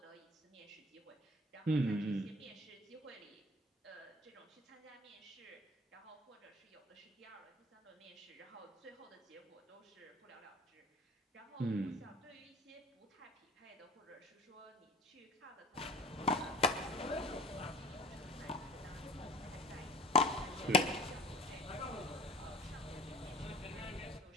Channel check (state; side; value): normal; both; correlation 0.43